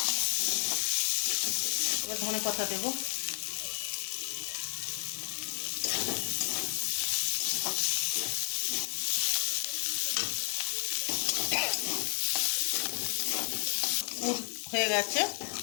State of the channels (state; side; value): silent; right; 56 dB below the other